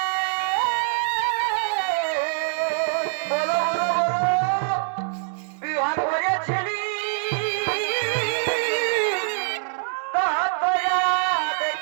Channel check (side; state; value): left; silent; 63 dB below the other